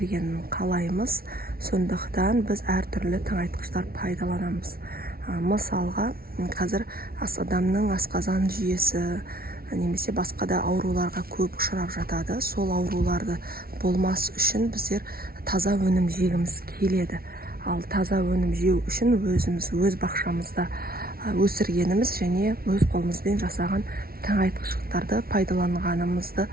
қалаймыз. Сондықтан біз әртүрлі тыңайтқыштар пайдаланамыз. Мысалға, қазір адамның асқазан жүйесі немесе басқа да ауруларға көп ұшырап жатады. Сол ауруларды болмас үшін біздер таза өнім жегіміз келеді. Ал таза өнім жеу үшін өз бақшамызда өсіргеніміз және өз қолымызбен жасаған тыңайтқыштарды пайдаланғанымызды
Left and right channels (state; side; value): late; left; 0.44 ms